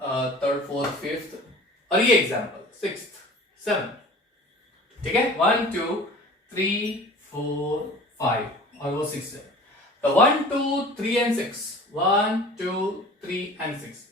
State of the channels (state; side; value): normal; both; correlation 0.43